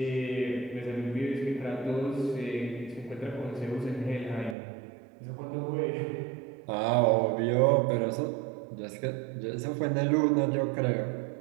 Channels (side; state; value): left; drops out; at 4.5 s